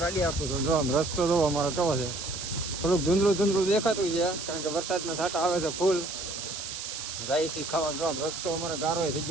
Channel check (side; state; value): right; noise; hiss, 7 dB below the sound